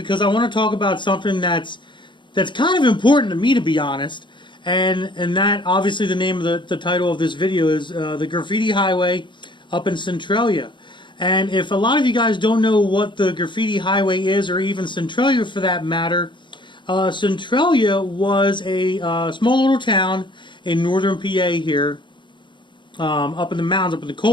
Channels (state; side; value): late; right; 0.23 ms